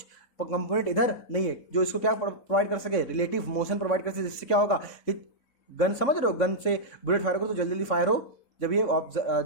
कंपोनेंट इधर नहीं है जो इसको क्या प्रोवाइड कर सके? रिलेटिव मोशन प्रोवाइड कर सके, जिससे क्या होगा कि गन, समझ रहे हो, गन से बुलेट फायर करो तो जल्दी जल्दी फायर हो जब ये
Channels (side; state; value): right; late; 3.6 ms